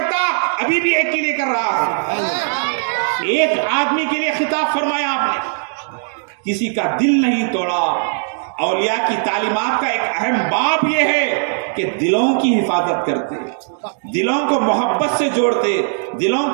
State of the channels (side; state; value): left; silent; digital silence